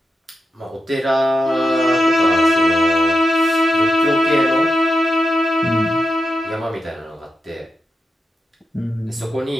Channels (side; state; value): both; normal; correlation 0.88